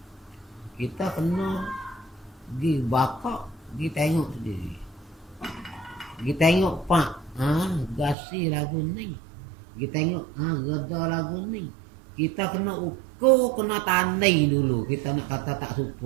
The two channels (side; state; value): left; drops out; at 8.2 s